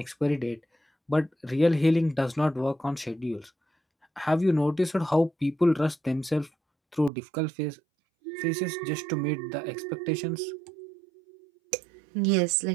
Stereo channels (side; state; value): left; drops out; at 7.1 s